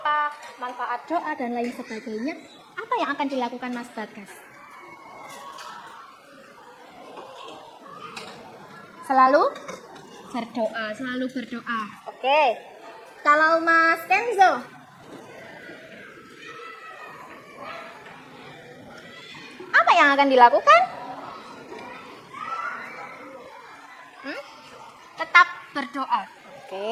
manfaat doa dan lain sebagainya. Apa yang akan dilakukan Mas Bagas? Selalu berdoa. Oke. Kalau Mas Kenzo, apa yang akan dilakukan? Tetap berdoa.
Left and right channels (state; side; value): identical; both; correlation 1.00